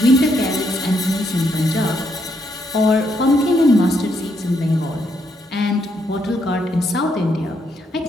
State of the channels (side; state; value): both; normal; correlation 0.76